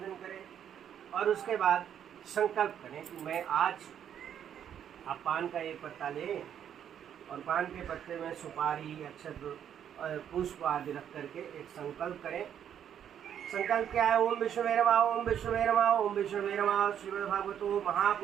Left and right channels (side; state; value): left; quieter; 9.3 dB